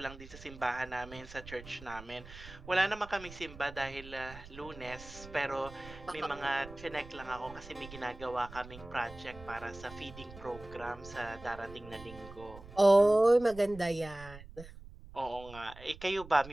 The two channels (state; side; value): noise; right; rumble, 16 dB below the sound